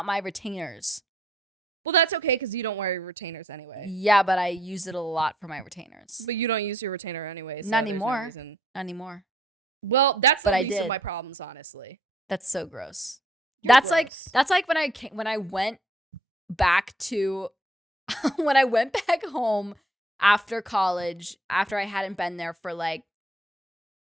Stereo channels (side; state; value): both; normal; correlation 0.65